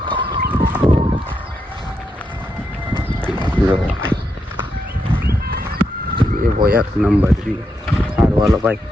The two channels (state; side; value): normal; both; correlation 0.83